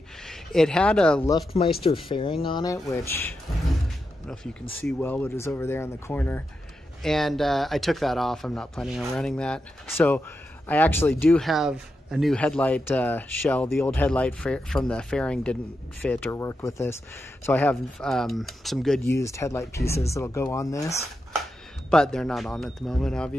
It had a Luftmeister fairing on it, which I don't know if you can see well, but is over there in the corner. And I took that off. I'm not planning on running that. So I actually do have a new headlight shell. The old headlight from the fairing didn't fit or work with this. So I have some good used headlight pieces that'll go on this, but they're not on at the moment,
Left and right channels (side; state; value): both; normal; correlation 0.87